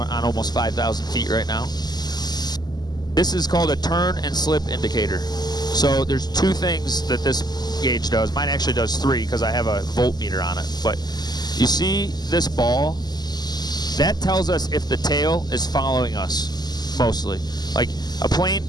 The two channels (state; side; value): late; right; 0.20 ms